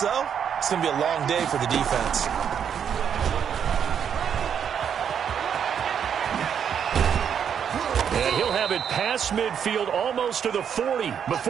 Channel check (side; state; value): left; quieter; 8.0 dB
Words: it's going to be a long day for the defense. And he'll have it past midfield almost to the 40